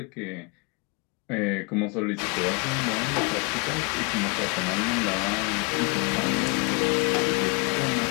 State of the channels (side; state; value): right; quieter; 31.7 dB